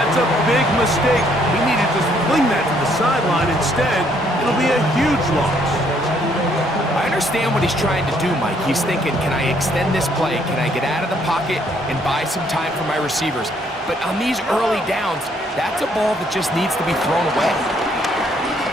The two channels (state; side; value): normal; both; correlation 0.67